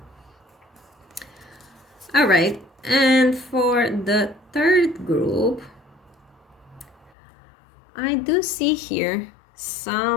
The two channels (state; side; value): drops out; right; at 7.1 s